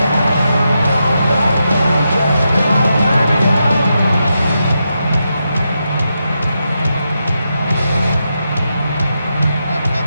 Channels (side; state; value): both; inverted; correlation -0.85